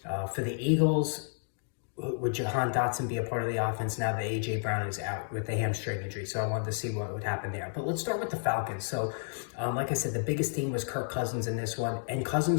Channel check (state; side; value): silent; right; digital silence